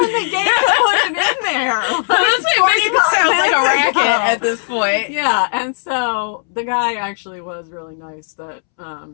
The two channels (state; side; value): silent; right; 69 dB below the other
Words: the gate to put it in there. Honestly, it makes it sound like a racket at this point. Yeah, and so the guy actually was really nice that